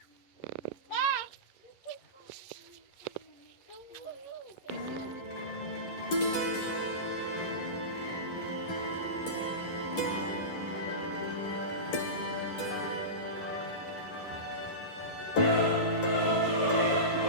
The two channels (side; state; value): right; late; 11 ms